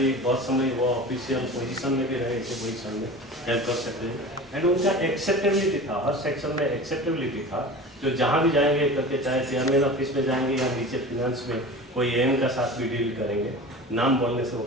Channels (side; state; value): both; normal; correlation 0.35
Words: समय वो ऑफिशियल पोजीशन में भी रहे, ऐसे पोजीशन में हेल्प कर सकते हैं। एंड उनका एक्सेप्टेबिलिटी था, हर सेक्शन में एक्सेप्टेबिलिटी था, जो जहाँ भी जाएंगे करके, चाहे चेयरमैन ऑफिस में जाएंगे या नीचे फिनेंस में कोई एम का साथ भी डील करेंगे, नाम बोलने से वो